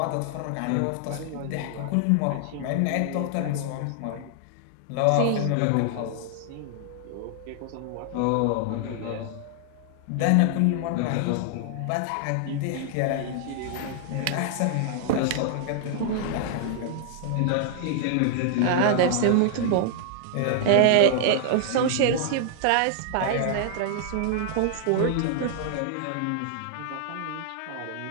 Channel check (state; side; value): different; both; correlation 0.00